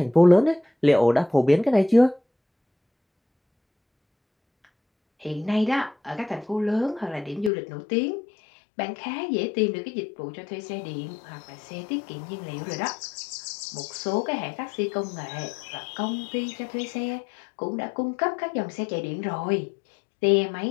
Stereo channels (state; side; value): drops out; right; at 7.5 s